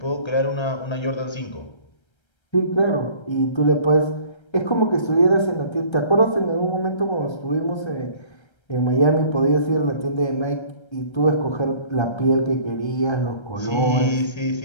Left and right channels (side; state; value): right; late; 1.3 ms